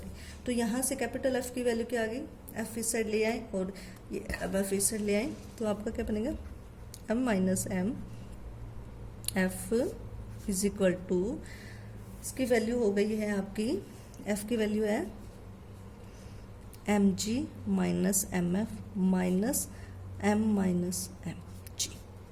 हैं। तो यहाँ से कैपिटल F की वैल्यू क्या आ गई, F इस साइड ले आए और ये अब F इस साइड ले आए, तो आपका क्या बनेगा, m minus m F is equal to, इसकी वैल्यू हो गई है आपकी, F की वैल्यू है mg minus mf minus m minus mg।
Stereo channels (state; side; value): identical; both; correlation 1.00